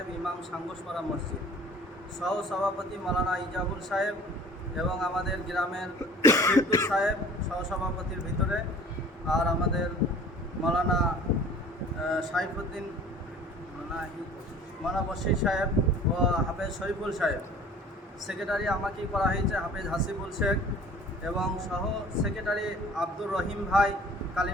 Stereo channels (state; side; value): normal; both; correlation 0.47